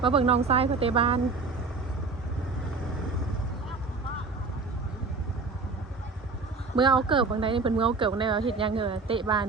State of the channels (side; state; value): left; quieter; 4.1 dB